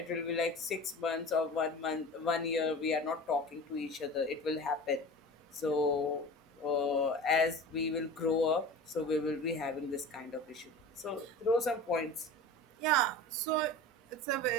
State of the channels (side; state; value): both; normal; correlation 0.35